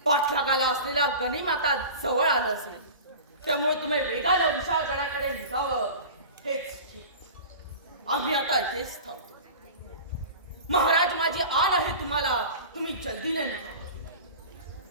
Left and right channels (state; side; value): inverted; both; correlation -0.35